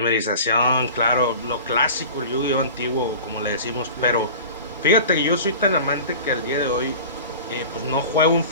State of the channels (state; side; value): inverted; both; correlation -0.37